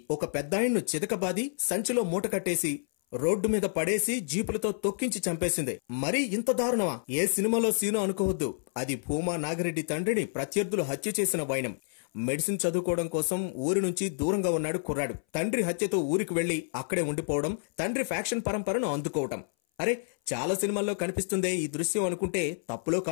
ఒక పెద్దాయన్ను చితకబాది సంచిలో మూట కట్టేసి రోడ్డు మీద పడేసి జీపులతో తొక్కించి చంపేసింది. మరీ ఇంత దారుణమా? ఏ సినిమాలో సీను అనుకోవద్దు. అది భూమా నాగిరెడ్డి తండ్రిని ప్రత్యర్థులు హత్య చేసిన వైనం. మెడిసిన్ చదువుకోవడం కోసం ఊరి నుంచి దూరంగా ఉన్నాడు కుర్రాడు. తండ్రి హత్యతో ఊరికి వెళ్లి అక్కడే ఉండిపోవడం, తండ్రి ఫ్యాక్షన్ పరంపరను అందుకోవటం. అరే, చాలా సినిమాల్లో కనిపిస్తుందే ఈ దృశ్యం అనుకుంటే తప్పులో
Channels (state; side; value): silent; right; 58 dB below the other